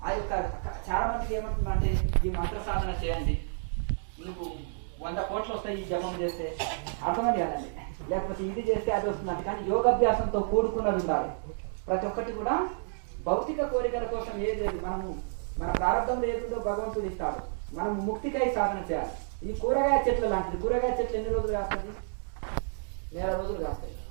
ఆ యొక్క చాలా మందికి ఏమంటుందంటే ఈ మంత్ర సాధన చేయండి, మీకు 100 కోట్లు వస్తాయి ఈ జపం చేస్తే, అర్థమని కదండి. లేకపోతే ఇది చేస్తే అది వస్తుందంటే. కానీ యోగాభ్యాసంతో కూడుకున్నది ఉండాలి. ప్రతి ఒక్కటి కూడా భౌతిక కోరికల కోసం ఏది లేదు. మనము మన ప్రారంభంలో ఏదో భగవంతుడు ఇస్తాడు, మనం ముక్తికై సాధన చేయాలి. ఈ కూరగాయ చెట్లు లాంటిది. కూరగాయ చెట్లు ఎన్ని రోజులు కాస్తుంది? 1 నెల రోజులు కాస్తాయి,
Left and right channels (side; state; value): left; silent; digital silence